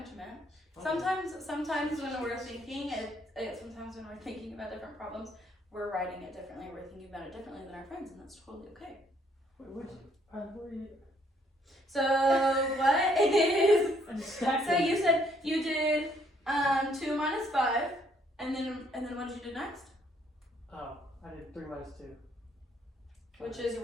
you meant. Sometimes when we're thinking, sometimes when we're thinking about different problems, we're writing it differently, we're thinking about it differently than our friends, and that's totally okay. Wait, which? Where are you? So what is, I just stacked so them. you said you did 2 minus 5, and then what did you do next? Oh, I did 3 minus 2. Which is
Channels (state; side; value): normal; both; correlation 0.67